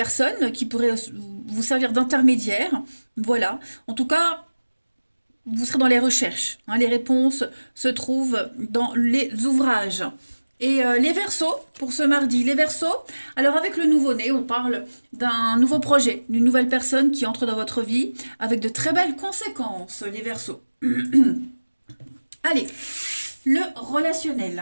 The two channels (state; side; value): inverted; both; correlation -1.00